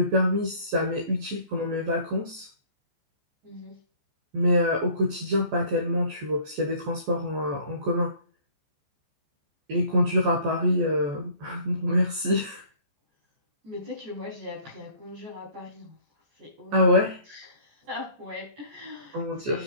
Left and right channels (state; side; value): late; left; 14 ms